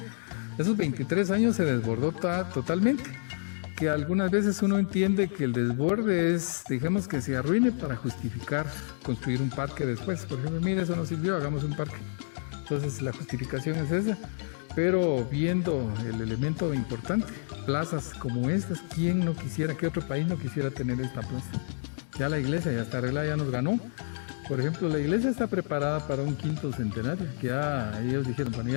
23 años se desbordó totalmente. Que algunas veces uno entiende que el desborde es, digamos, que se arruine para justificar construir un parque después. Por ejemplo, mire, eso no sirvió, hagamos un parque. Entonces la justificación es esa, pero viendo el elemento importante, plazas como estas, ¿quién no quisiera, qué otro país no quisiera tener esta plaza? Ya la iglesia ya está arreglada, ya nos ganó. Por ejemplo, la iglesia está preparada para un 5º centenario, que ya ellos dijeron, bueno,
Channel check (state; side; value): silent; right; digital silence